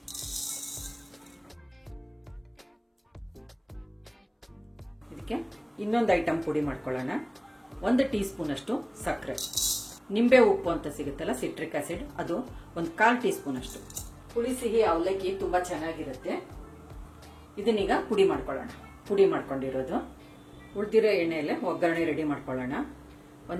ಇದಕ್ಕೆ ಇನ್ನೊಂದು ಐಟಮ್ ಪುಡಿ ಮಾಡ್ಕೊಳ್ಳೋಣ. 1 ಟೀ ಸ್ಪೂನ್ ಅಷ್ಟು ಸಕ್ಕರೆ, ನಿಂಬೆ ಉಪ್ಪು ಅಂತ ಸಿಗುತ್ತಲ್ಲ, ಸಿಟ್ರಿಕ್ ಆಸಿಡ್, ಅದು 1/4 ಟೀ ಸ್ಪೂನ್ ಅಷ್ಟು. ಹುಳಿ ಸಿಹಿ ಅವಲಕ್ಕಿ ತುಂಬಾ ಚೆನ್ನಾಗಿರುತ್ತೆ. ಇದನ್ನೀಗ ಪುಡಿ ಮಾಡ್ಕೊಳ್ಳೋಣ. ಪುಡಿ ಮಾಡ್ಕೊಂಡಿರೋದು ಉಳಿದಿರೋ ಎಣ್ಣೆಯಲ್ಲೇ ಒಗ್ಗರಣೆ ರೆಡಿ ಮಾಡ್ಕೊಳ್ಳೋಣ.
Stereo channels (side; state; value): both; identical; correlation 1.00